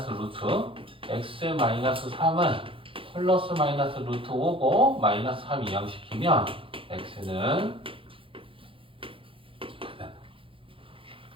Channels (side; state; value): left; late; 0.26 ms